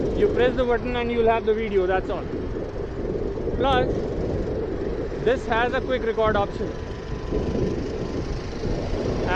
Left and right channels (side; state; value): both; identical; correlation 1.00